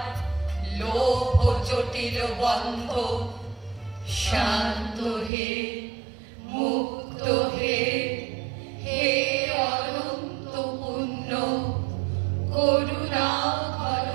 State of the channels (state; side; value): drops out; left; at 5.3 s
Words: লোভ জটিল বন্ধ। শান্ত হে, মুক্ত হে, হে অনন্ত পুণ্য, করুণা ঘন